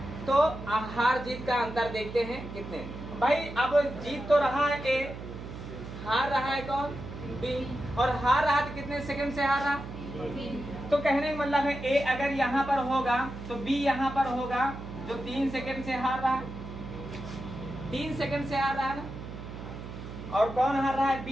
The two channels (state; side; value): noise; right; hum, 10 dB below the sound